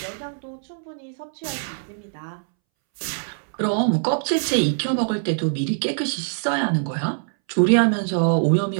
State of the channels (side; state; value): left; silent; 63 dB below the other